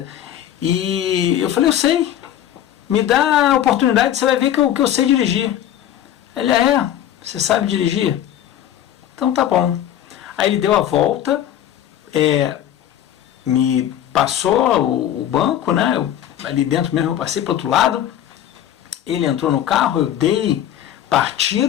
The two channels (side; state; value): right; quieter; 11.2 dB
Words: e eu falei: eu sei, me dá a oportunidade, você vai ver que eu sei dirigir. Ele: você sabe dirigir? Então tá bom. Aí ele deu a volta, me passou o banco, né, ali dentro mesmo eu passei para o outro lado, ele entrou no carro, eu dei